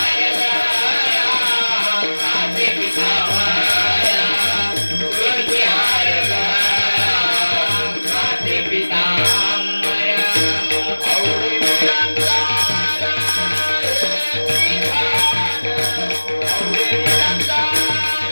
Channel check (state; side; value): inverted; both; correlation -1.00